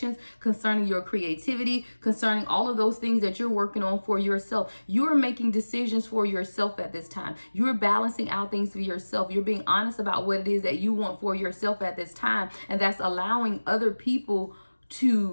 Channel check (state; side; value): inverted; both; correlation -1.00